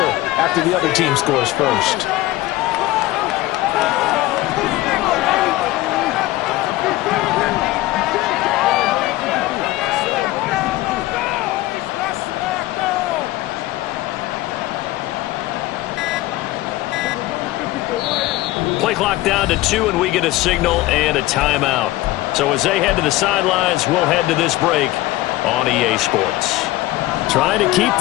after the other team scores first. Play clock down to 2, and we get a signal and a timeout. So as they head to the sidelines, we'll head to this break on EA Sports. Trying to keep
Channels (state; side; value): quieter; right; 17.4 dB